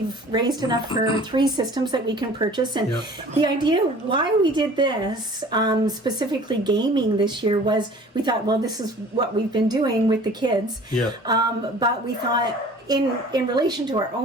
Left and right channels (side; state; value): both; normal; correlation 0.47